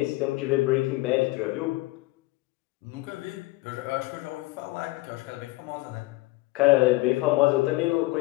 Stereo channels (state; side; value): quieter; right; 20.6 dB